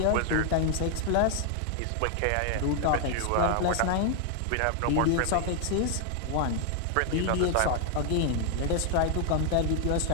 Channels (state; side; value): different; both; correlation 0.00